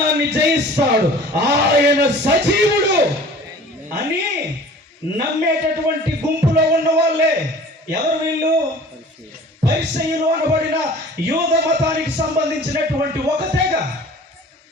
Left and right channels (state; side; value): normal; both; correlation 0.45